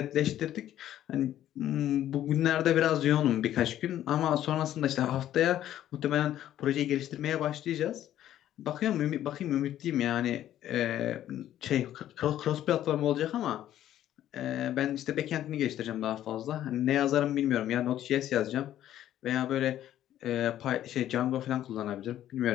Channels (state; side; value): quieter; right; 12.1 dB